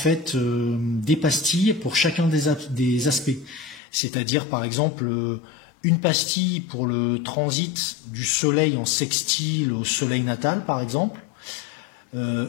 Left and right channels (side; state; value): right; drops out; at 3.8 s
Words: des pastilles pour chacun des aspects. C'est-à-dire, par exemple, une pastille pour le transit du Soleil en sextile au Soleil natal, par exemple.